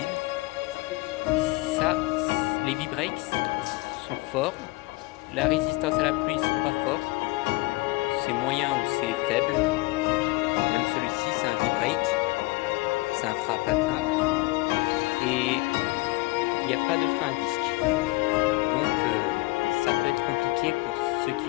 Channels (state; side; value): quieter; right; 22.7 dB